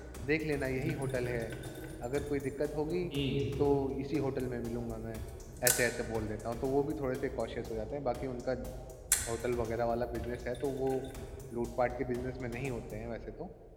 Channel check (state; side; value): identical; both; correlation 1.00